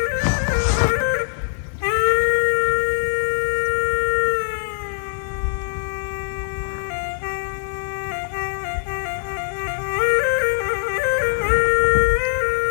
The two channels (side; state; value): right; silent; digital silence